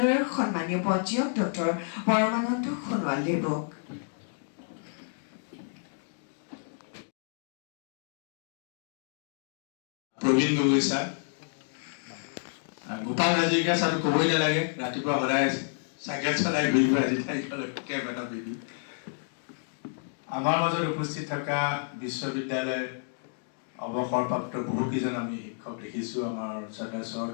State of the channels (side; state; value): right; silent; digital silence